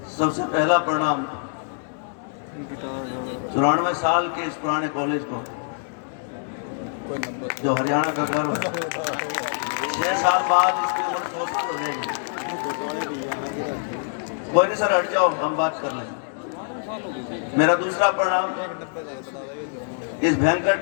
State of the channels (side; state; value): right; silent; digital silence